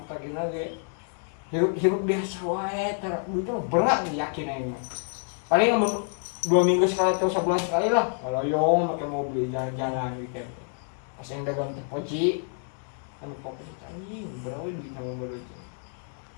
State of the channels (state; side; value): silent; right; 56 dB below the other